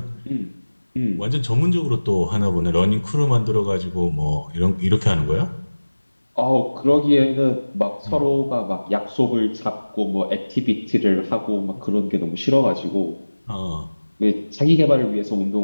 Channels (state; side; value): inverted; both; correlation -1.00